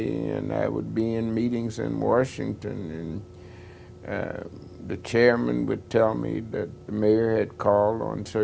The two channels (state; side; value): identical; both; correlation 1.00